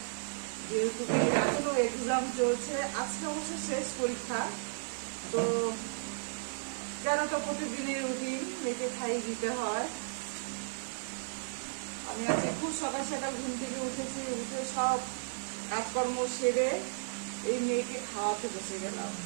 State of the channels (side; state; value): left; silent; digital silence